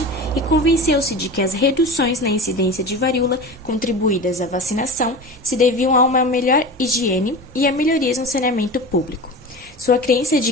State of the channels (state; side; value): normal; both; correlation 0.31